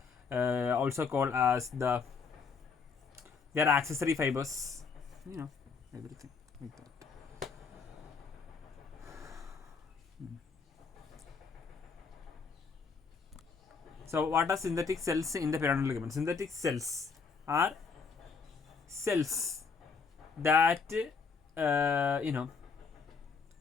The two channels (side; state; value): right; quieter; 5.3 dB